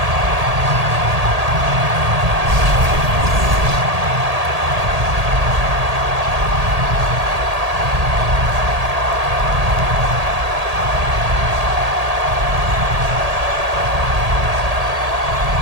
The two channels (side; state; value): left; late; 1.8 ms